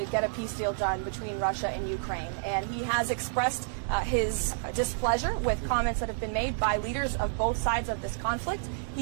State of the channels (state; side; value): silent; left; digital silence